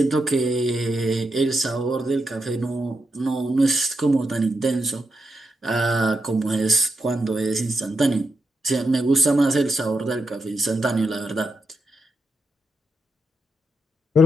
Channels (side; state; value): both; normal; correlation 0.85